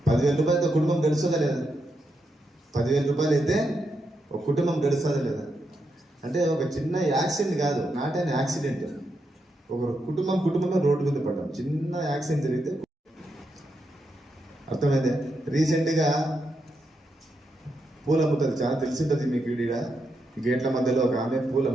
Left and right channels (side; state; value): both; normal; correlation 0.83